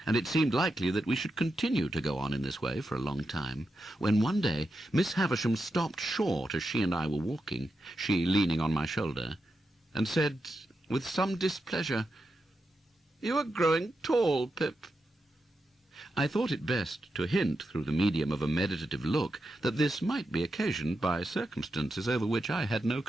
and it seemed likely that we should continue to go on in this way for a long time, when one day Miss Havisham stopped short as she and I were walking, she leaning on my shoulder, and said, with some displeasure, "You are growing tall, Pip." I thought it best to hint through the medium of a meditative look that this might be occasioned by circumstances over which I had no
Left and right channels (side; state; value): both; normal; correlation 0.87